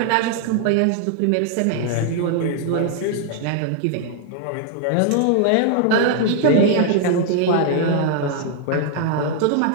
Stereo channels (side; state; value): both; different; correlation 0.00